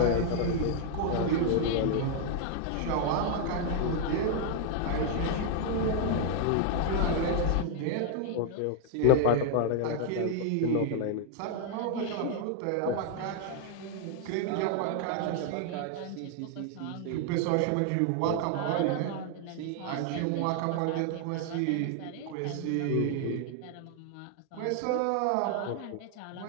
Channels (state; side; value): different; both; correlation 0.00